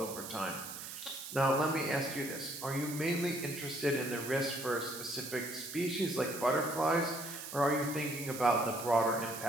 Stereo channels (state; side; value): noise; right; hiss, 9 dB below the sound